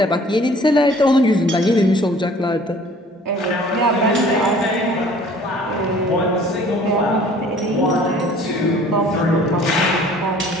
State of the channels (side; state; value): both; normal; correlation 0.52